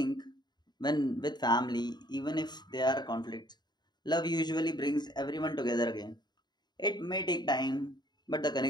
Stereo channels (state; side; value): late; right; 0.21 ms